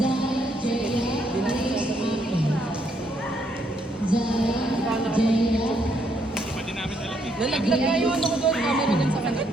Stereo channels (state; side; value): normal; both; correlation 0.73